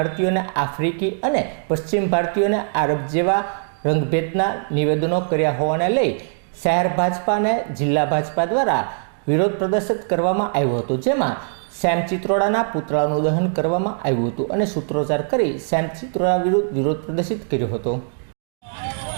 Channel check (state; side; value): silent; left; digital silence